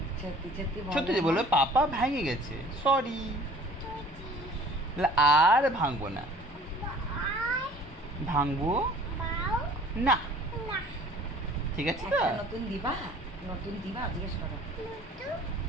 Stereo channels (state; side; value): normal; both; correlation 0.50